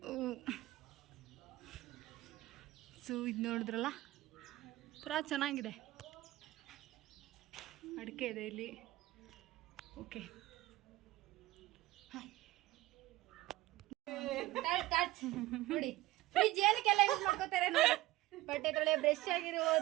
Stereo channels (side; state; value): left; quieter; 17.5 dB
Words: ಸೊ ಇದು ನೋಡಿದ್ರಲ್ಲ, ಪೂರಾ ಚೆನ್ನಾಗಿದೆ. ಅಡಿಕೆ ಇದೆ ಇಲ್ಲಿ. ಓಕೆ, ನೋಡಿ ಫ್ರಿಜ್ ಏನಕ್ಕೆಲ್ಲ ಯೂಸ್ ಮಾಡ್ಕೋತಾರೆ ನೋಡಿ. ಬಟ್ಟೆ ತೊಳೆ, ಬ್ರಷ್